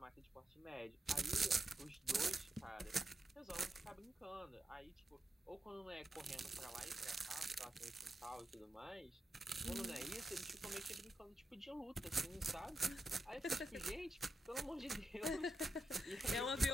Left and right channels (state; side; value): normal; both; correlation 0.87